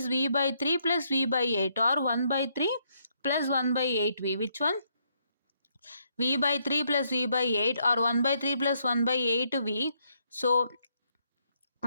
V by 3 plus V by 8, or 1 by 3 plus 1 by 8V. Which one? V by 3 plus V by 8, or 1 by 3 plus 1 by 8V. So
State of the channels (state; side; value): inverted; both; correlation -0.74